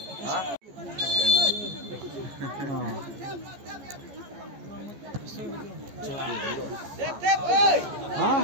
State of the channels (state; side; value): late; left; 14 ms